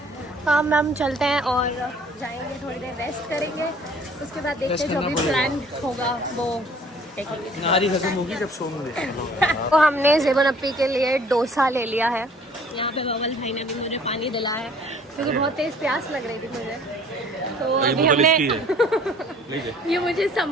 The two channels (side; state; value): both; normal; correlation 0.54